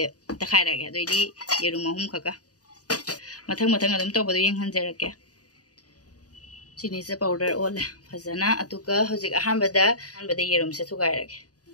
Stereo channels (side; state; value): right; late; 0.68 ms